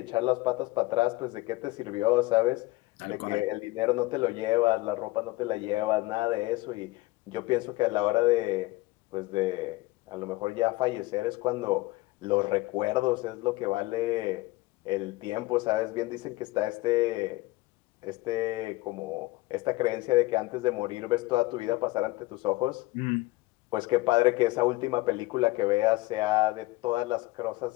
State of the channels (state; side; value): quieter; right; 20.5 dB